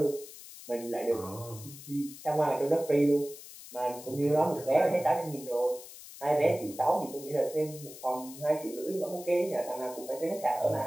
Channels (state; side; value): noise; left; hiss, 15 dB below the sound